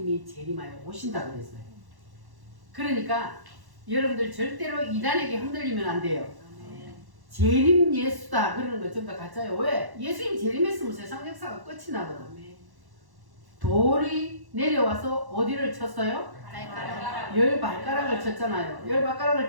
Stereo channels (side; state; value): left; late; 1.1 ms